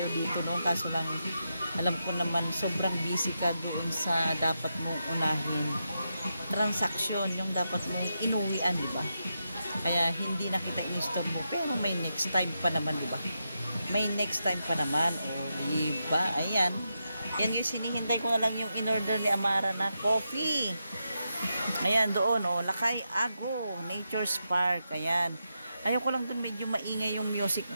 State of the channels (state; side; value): inverted; both; correlation -0.86